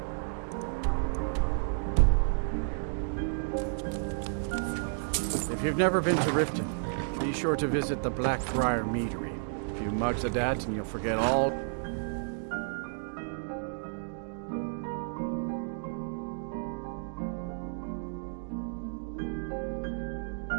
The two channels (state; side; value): silent; left; digital silence